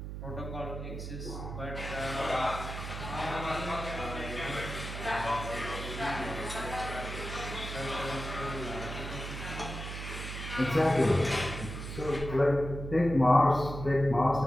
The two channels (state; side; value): noise; right; hum, 7 dB below the sound